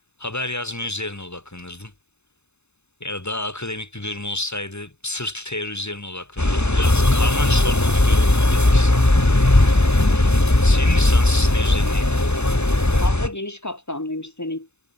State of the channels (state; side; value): late; right; 0.81 ms